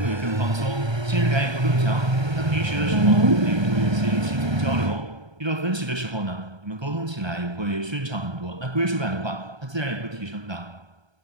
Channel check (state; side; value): late; left; 1.3 ms